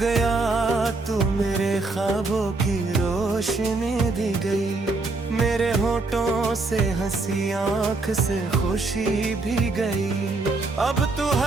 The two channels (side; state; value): left; quieter; 3.4 dB